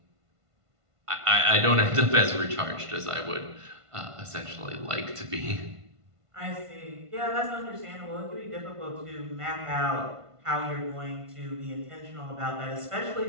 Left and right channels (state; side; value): late; left; 1.5 ms